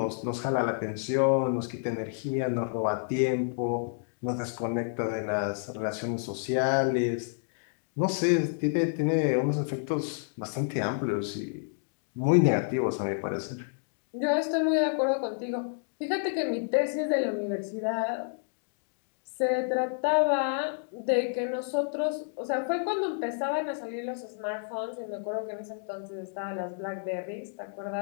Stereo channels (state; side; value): silent; right; digital silence